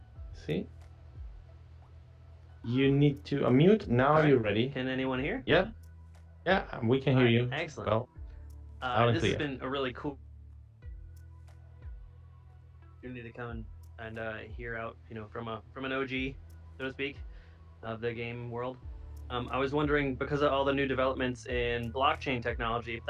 see. You need to unmute. Now All right. you're ready. Can anyone hear? Yeah. Yeah, we can hear All right, you. excellent. Well, loud and This has clear. been a really cool opportunity to come and hear out, from an OG, so to speak, of the game world. I was wondering, because of all the new developments in blockchain technology, if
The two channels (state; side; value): identical; both; correlation 1.00